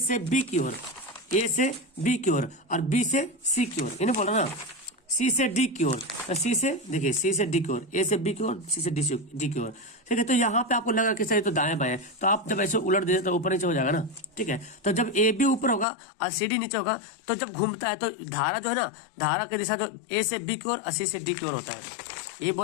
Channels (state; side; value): drops out; right; at 15.9 s